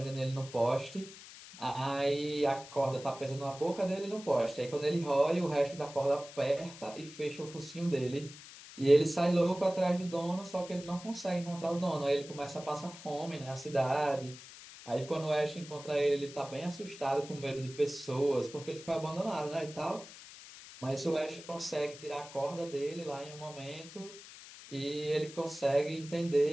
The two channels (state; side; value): noise; left; hiss, 16 dB below the sound